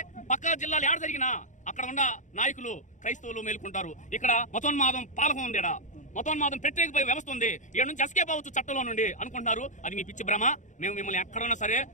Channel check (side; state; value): right; late; 0.36 ms